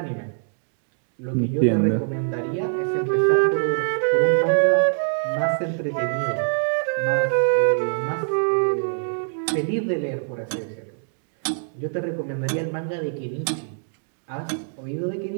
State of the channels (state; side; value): silent; left; digital silence